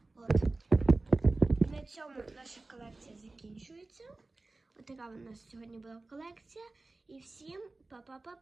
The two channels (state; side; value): quieter; left; 3.2 dB